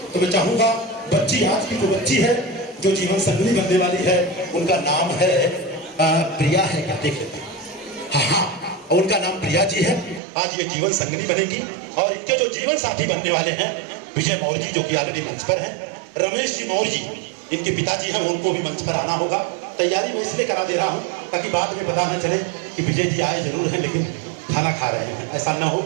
तो मैं चाहूँगा बच्ची, आज की जो बच्ची है जो जीवन संगनी बनने वाली है, उनका नाम है प्रिया है, क्या देख लेते हैं? हाँ, उनका नाम प्रिया जी है। आज ये जीवन संगनी बनेगी और इनके जो जीवन साथी बनने वाले हैं विजय मौर्य जी जो कि ऑलरेडी मंच पर हैं, रमेश जी मौर्य जी इनके पिताजी हैं, उनको भी मंच पर आना होगा। तैयारी मैं इसलिए करा दे रहा हूँ ताकि बाद में पता न चले कि विजय जी आए जरूर हैं लेकिन खाना खा रहे हैं, ऐसा न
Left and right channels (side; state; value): left; drops out; at 10.2 s